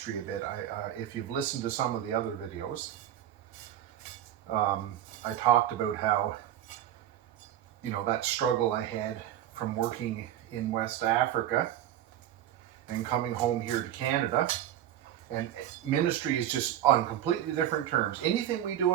a bit. If you've listened to some of the other videos, I talked about how, that struggle I had from working in West Africa and coming home here to Canada. And ministry is just on completely different terms. Anything we do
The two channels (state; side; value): quieter; left; 11.8 dB